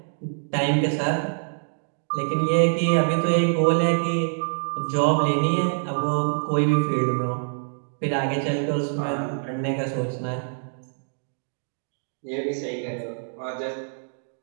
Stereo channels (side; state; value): left; silent; digital silence